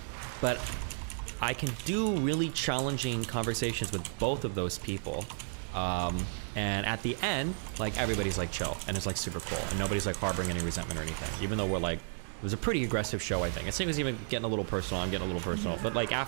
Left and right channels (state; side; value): silent; left; digital silence